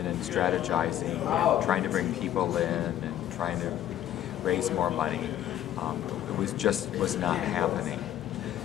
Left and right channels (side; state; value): right; quieter; 11.9 dB